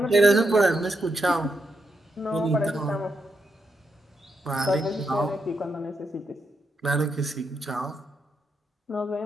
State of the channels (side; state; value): both; normal; correlation 0.83